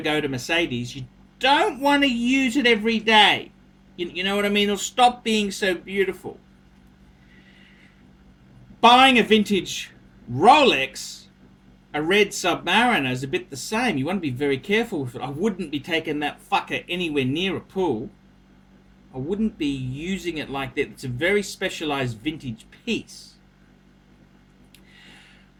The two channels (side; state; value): both; identical; correlation 1.00